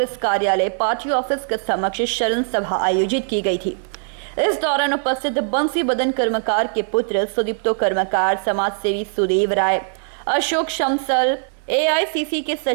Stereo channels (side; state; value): left; silent; 65 dB below the other